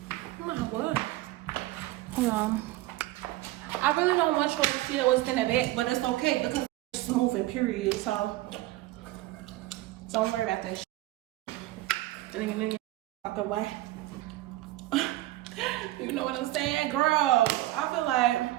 Oh my God. Hold on. I really don't want y'all to see what's in the back, but it's okay because it's smooth and period, so don't worry about that shit. And then walk away. You know what I'm saying, girl? I feel like,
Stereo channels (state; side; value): quieter; left; 16.8 dB